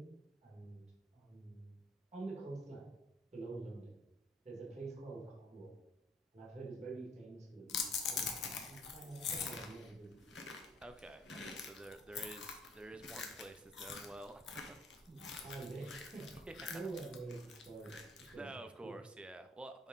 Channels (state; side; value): normal; both; correlation 0.61